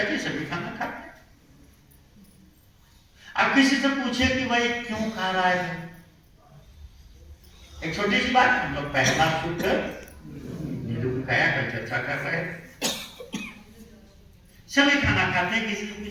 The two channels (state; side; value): identical; both; correlation 1.00